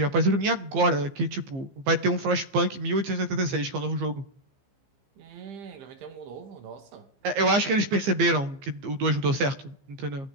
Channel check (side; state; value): left; late; 15 ms